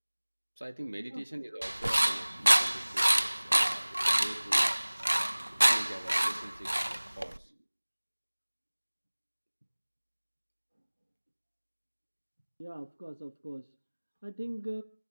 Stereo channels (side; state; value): both; inverted; correlation -1.00